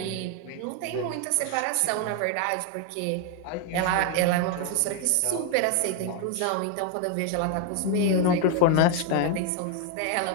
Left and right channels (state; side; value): different; both; correlation 0.01